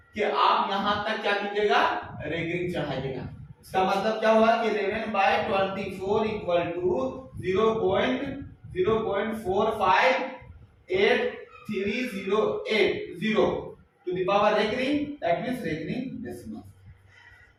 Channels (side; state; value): both; identical; correlation 1.00